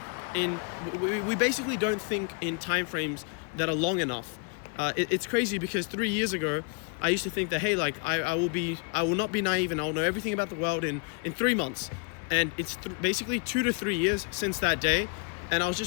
We basically don't think in time frames that are long enough. It's crazy because 3 years ago, I used to think that, hey, like I will not be naive and I'll know everything about the world in 3 months. And it's basically 2 to 3 years since that day. And I was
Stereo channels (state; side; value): quieter; right; 33.1 dB